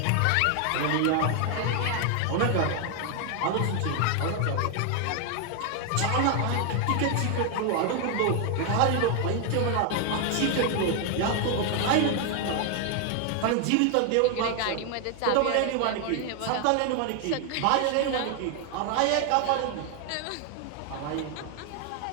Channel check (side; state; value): both; different; correlation 0.00